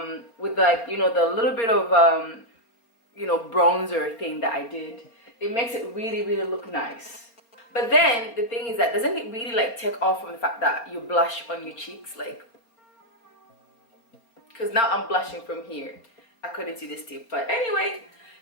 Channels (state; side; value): late; right; 4.3 ms